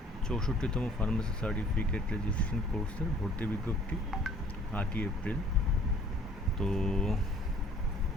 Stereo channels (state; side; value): normal; both; correlation 0.56